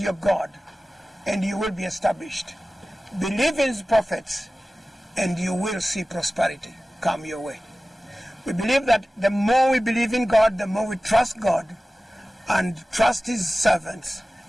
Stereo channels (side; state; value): both; normal; correlation 0.96